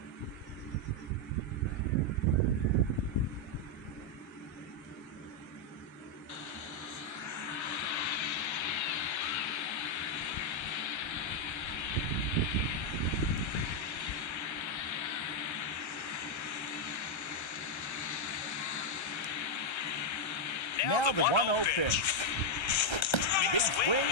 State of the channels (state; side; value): late; right; 1.3 ms